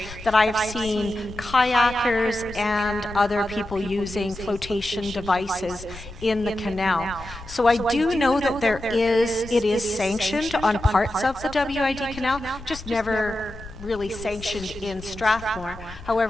that I have seen kayakers and other people using flotation devices in the canal. So I do know that it is sanctioned on parts of the WID canal, just never really sanctioned in Strathmore.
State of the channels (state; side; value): noise; left; rumble, 15 dB below the sound